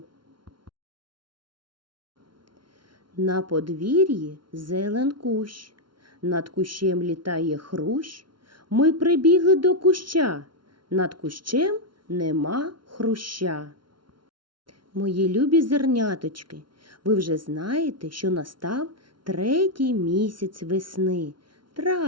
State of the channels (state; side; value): late; left; 0.72 ms